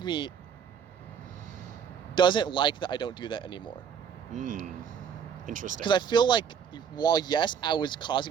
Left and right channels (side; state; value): left; quieter; 7.5 dB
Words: me doesn't like that I don't do that anymore. Interesting. Because I feel like, while yes, I was